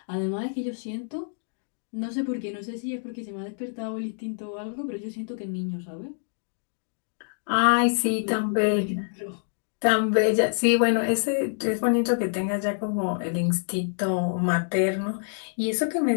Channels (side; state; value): right; silent; digital silence